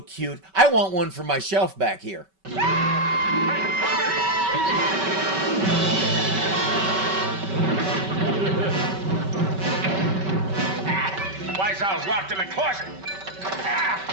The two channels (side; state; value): left; late; 5.2 ms